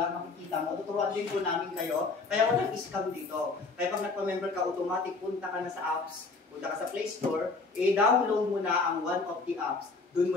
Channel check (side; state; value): right; quieter; 3.9 dB